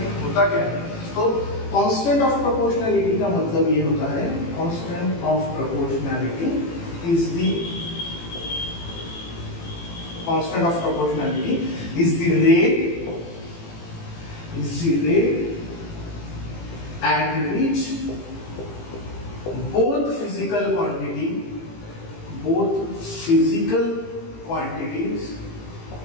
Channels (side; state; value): right; late; 18 ms